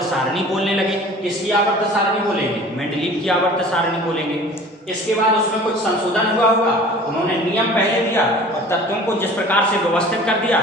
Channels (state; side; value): normal; both; correlation 0.44